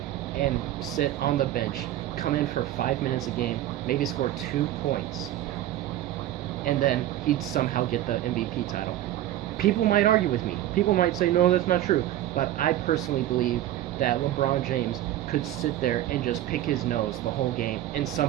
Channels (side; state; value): left; quieter; 13.4 dB